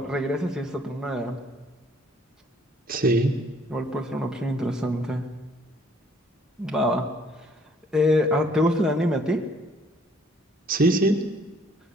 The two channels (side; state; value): both; normal; correlation 0.61